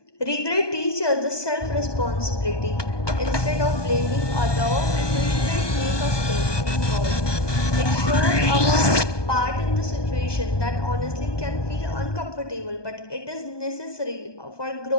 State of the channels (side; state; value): right; late; 1.2 ms